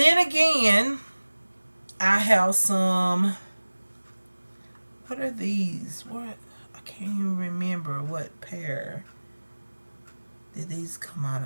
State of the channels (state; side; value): inverted; both; correlation -1.00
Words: again, I have some. What are these? What? I can't even remember what pair did these come out